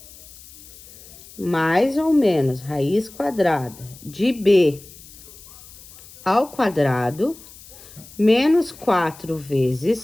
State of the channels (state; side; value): noise; left; hiss, 20 dB below the sound